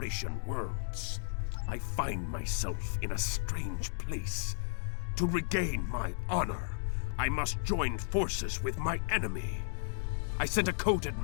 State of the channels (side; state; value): right; silent; digital silence